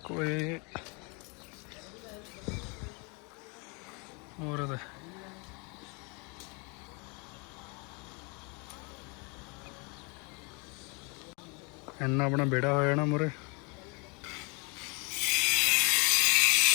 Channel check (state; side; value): quieter; right; 32.1 dB